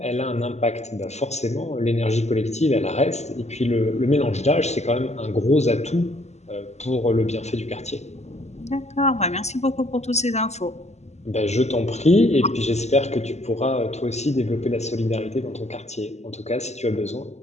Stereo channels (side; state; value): right; late; 0.33 ms